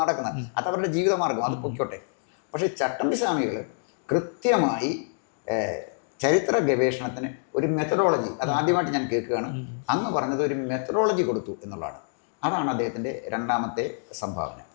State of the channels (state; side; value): silent; right; digital silence